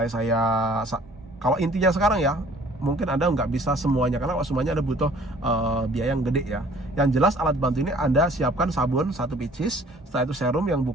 kalau intinya sekarang ya, mungkin Anda nggak bisa semuanya, karena kalau semuanya Anda butuh biaya yang gede ya. Yang jelas alat bantu ini Anda siapkan sabun 1 pieces, setelah itu serum yang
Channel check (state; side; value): normal; both; correlation 0.54